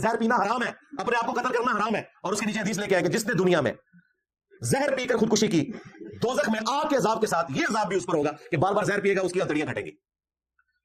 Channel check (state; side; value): identical; both; correlation 1.00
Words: पीना हराम है, अपने आप को कत्ल करना हराम है। और उसके नीचे हदीस लेके आए कि जिसने दुनिया में जहर पीकर खुदकुशी की, दोजख में आग के अजाब के साथ ये अजाब भी उस पर होगा कि बार बार जहर पिएगा, उसकी हथेलियां घटेंगी।